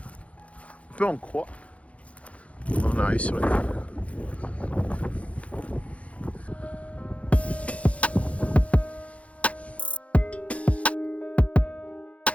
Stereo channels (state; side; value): late; right; 0.064 ms